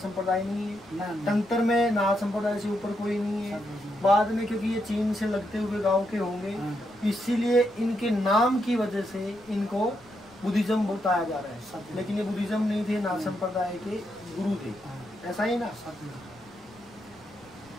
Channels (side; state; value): left; noise; rumble, 27 dB below the sound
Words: नहीं है, तंत्र में नाथ संप्रदाय से ऊपर कोई नहीं है। बाद में क्योंकि ये चीन से लगते हुए गांव के होंगे, इसीलिए इनके नाम की वजह से इनको बुद्धिज्म बताया जा रहा है, लेकिन ये बुद्धिज्म नहीं थे, नाथ संप्रदाय के गुरु थे, ऐसा ही ना।